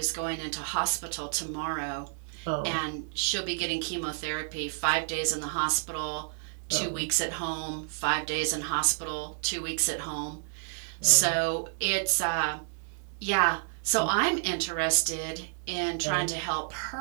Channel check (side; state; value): left; silent; digital silence